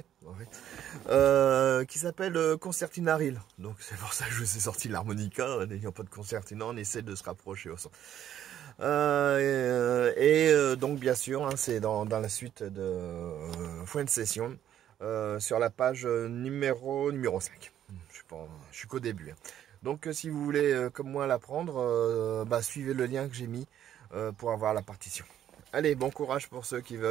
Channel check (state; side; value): quieter; left; 10.8 dB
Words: qui s'appelle Concertina Reel. Donc c'est pour ça que je vous ai sorti l'harmonica, n'ayant pas de concertina, on essaie de se rapprocher au son. Donc bien sûr, hein, c'est dans la suite de Fuente Session, sur la page numéro 5. Je suis qu'au début. Hein. Donc si vous voulez comme moi l'apprendre, suivez le lien que j'ai mis pour avoir la partition. Allez, bon courage pour ceux qui